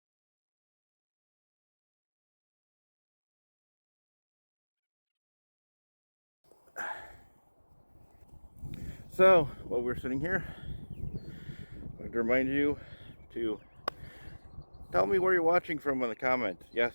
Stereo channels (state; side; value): inverted; both; correlation -1.00